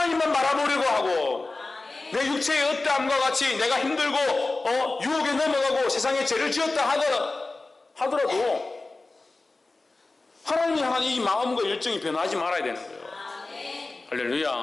바라보려고 하고, 내 육체의 어떠함과 같이 내가 힘들고 유혹에 넘어가고 세상에 죄를 지었다 하더라도 하나님이 향한 이 마음과 열정이 변하지 말아야 되는 거예요.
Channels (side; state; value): right; quieter; 3.3 dB